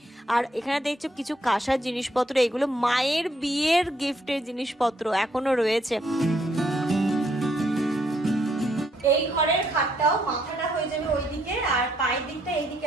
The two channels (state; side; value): normal; both; correlation 0.71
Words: আর এখানে দেখছো কিছু কাঁসার জিনিসপত্র, এগুলো মায়ের বিয়ের গিফটের জিনিসপত্র এখনো রয়েছে। এই ঘরের খাটটাও মাথাটা হয়ে যাবে ওইদিকে আর পায়ের দিকটা